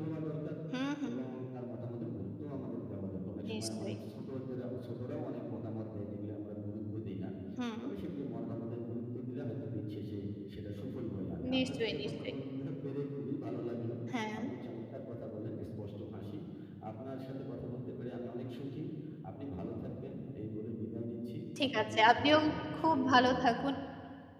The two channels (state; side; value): identical; both; correlation 1.00